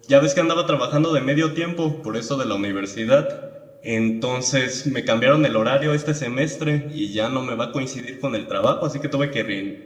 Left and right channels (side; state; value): both; identical; correlation 1.00